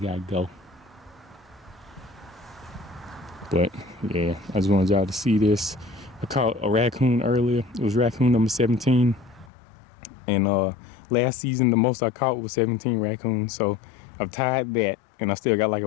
go. But yeah, I just wanted y'all to see this. I caught a raccoon earlier. It was raccoon number 17. And last season, the most I caught was 17 raccoons. So I've tied that, and I still got like a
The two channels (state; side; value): drops out; right; at 9.5 s